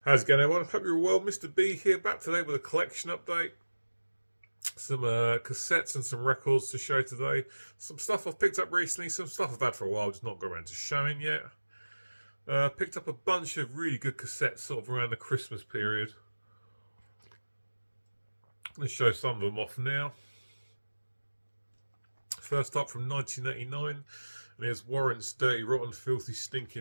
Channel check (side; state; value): both; inverted; correlation -1.00